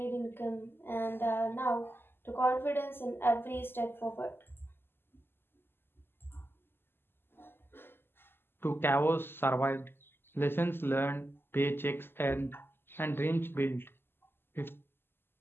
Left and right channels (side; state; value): right; late; 0.11 ms